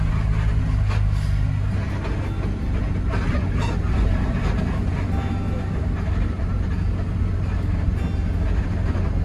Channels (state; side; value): identical; both; correlation 1.00